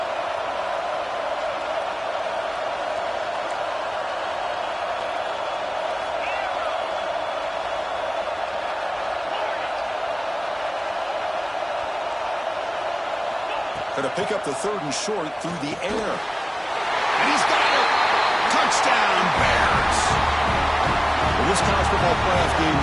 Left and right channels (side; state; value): both; identical; correlation 1.00